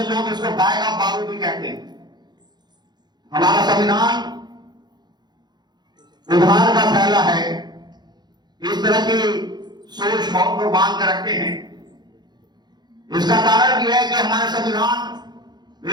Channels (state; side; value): late; left; 0.21 ms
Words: लोग इसको गाय का बारूद भी कहते हैं। हमारा संविधान उधार का फैला है, इस तरह की सोच बहुत लोग बांध कर रखते हैं। इसका कारण यह है कि हमारे संविधान